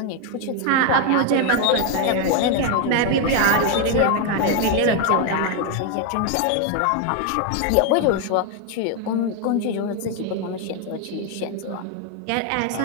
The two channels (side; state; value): both; different; correlation 0.01